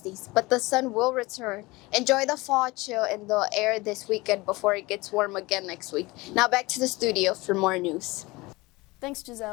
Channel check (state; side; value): quieter; right; 22.2 dB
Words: but the sun will return. Enjoy the fall chill in the air this weekend before it gets warm again next week. Now back to the studio for more news. Thanks,